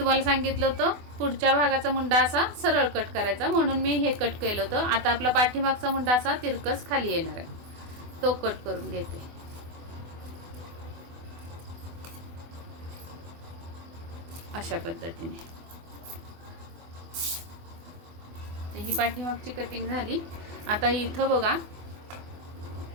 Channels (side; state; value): left; late; 24 ms